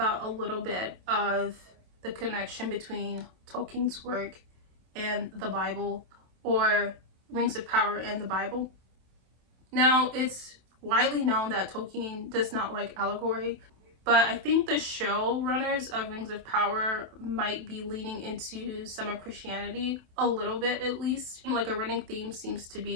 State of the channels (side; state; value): left; late; 27 ms